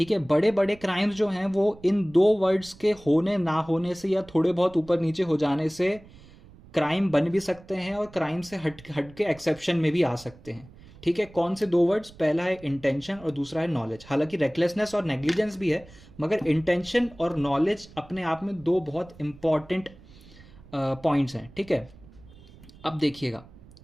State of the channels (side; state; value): right; noise; rumble, 22 dB below the sound